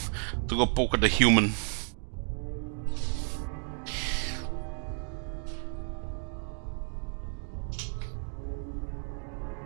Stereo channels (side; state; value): left; silent; 57 dB below the other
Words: to go poke at the human.